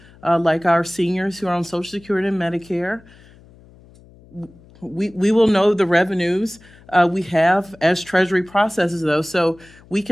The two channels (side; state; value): left; noise; hum, 25 dB below the sound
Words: like our seniors who are on Social Security and Medicare, we will know the revenues we have as Treasury processes those. So we